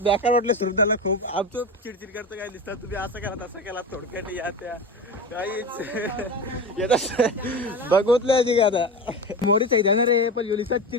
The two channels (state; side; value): normal; both; correlation 0.25